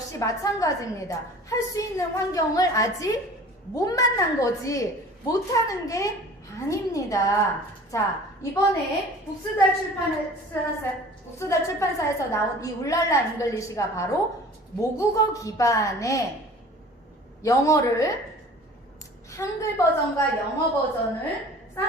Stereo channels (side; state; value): both; normal; correlation 0.45